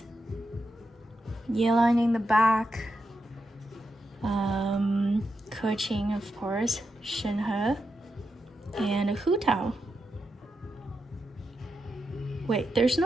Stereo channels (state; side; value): normal; both; correlation 0.87